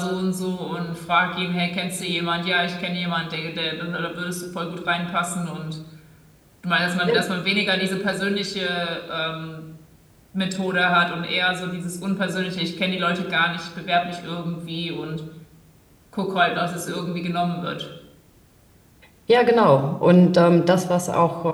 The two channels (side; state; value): both; identical; correlation 1.00